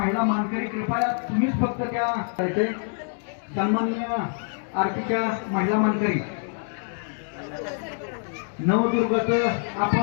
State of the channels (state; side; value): silent; right; 60 dB below the other